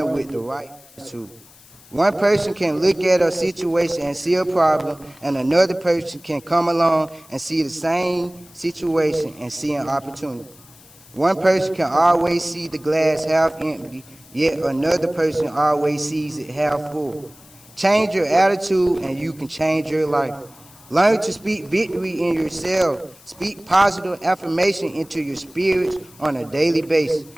with the right attitude. One person can look at a situation and see a problem, and another person can come along and see the same situation and see an opportunity. One person can always see the glass half empty, yet another person always sees it half full. Change your attitude and you can change your life. Learn to speak victory in yourself. Speak positive affirmation into your spirits on a daily basis.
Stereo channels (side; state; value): left; noise; hiss, 24 dB below the sound